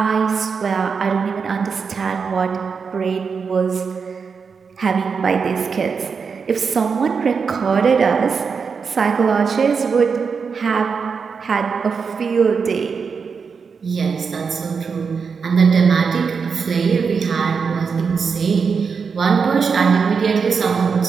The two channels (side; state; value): left; quieter; 5.6 dB